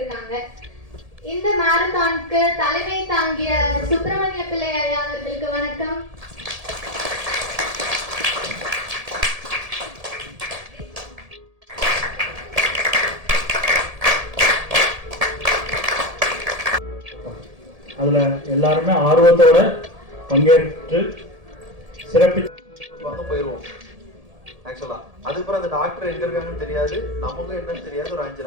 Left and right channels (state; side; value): late; left; 1.7 ms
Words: இந்த மேரத்தானுக்கு தலைமை தாங்கிய சுப்பிரமணிய பிள்ளை ஐயா அவர்களுக்கு வணக்கம். அதுல எல்லாருமே ஆர்வத்தோட பங்கேற்று சிறப்பிச்சு போயிடுவோம். ஆக்சுவலா அதுக்கப்புறம் அந்த டாக்டர் எங்க இருக்காங்கன்னு தெரியாது, நமக்கும் என்னன்னு தெரியாது. ஒரு 5